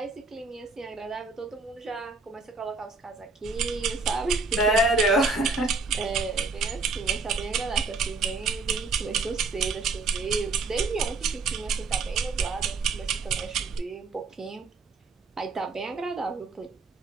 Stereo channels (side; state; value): left; quieter; 3.8 dB